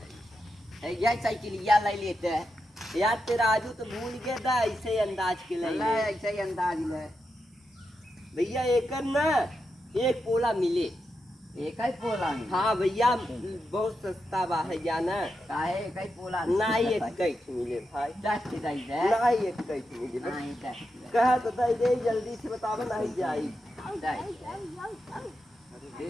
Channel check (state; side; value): normal; both; correlation 0.87